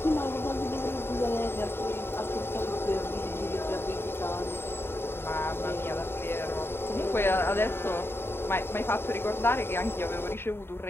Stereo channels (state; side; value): late; right; 0.11 ms